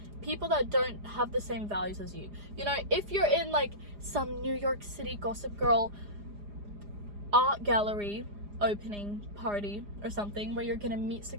People that don't have the same values as you. You know, if you're in like some New York City Gossip Girl art gallery opening party or something where you're gonna meet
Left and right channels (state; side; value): late; left; 4.9 ms